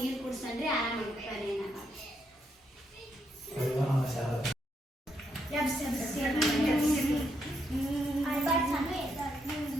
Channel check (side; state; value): both; normal; correlation 0.78